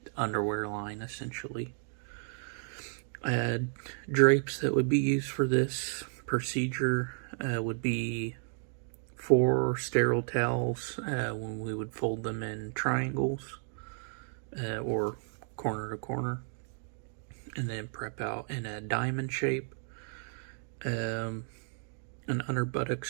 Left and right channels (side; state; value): left; silent; 56 dB below the other